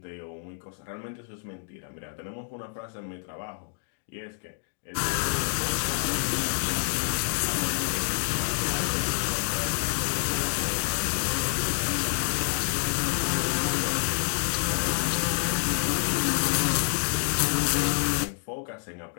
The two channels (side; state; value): right; silent; digital silence